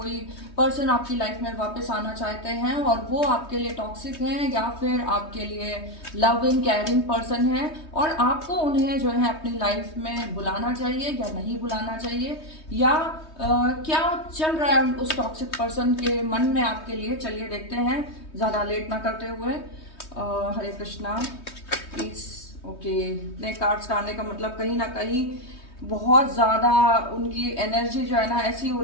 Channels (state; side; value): late; right; 3.2 ms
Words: पर्सन आपकी लाइफ में वापस आना चाहते हैं और वो आपके लिए टॉक्सिक हैं या फिर आपके लिए लविंग केयरिंग पर्सन है और आपको उन्हें जो है अपनी लाइफ में बुलाना चाहिए या नहीं बुलाना चाहिए, या क्या चल रहा है उस टॉक्सिक पर्सन के मन में आपके लिए। चलिए देखते हैं ज़्यादा लेट ना करते हुए। हरे कृष्णा प्लीज। ओके, नए कार्ड्स का आने का मतलब कहीं ना कहीं बहुत ज़्यादा उनकी एनर्जी जो है ना ऐसी हो